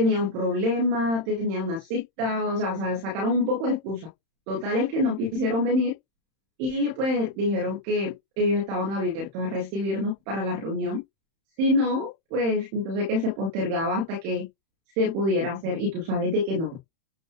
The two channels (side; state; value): left; late; 31 ms